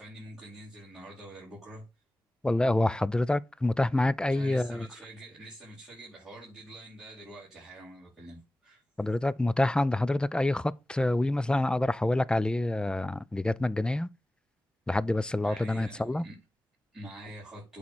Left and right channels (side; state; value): both; normal; correlation 0.97